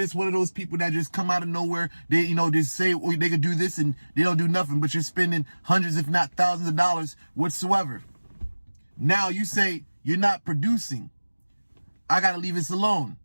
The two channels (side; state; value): both; inverted; correlation -1.00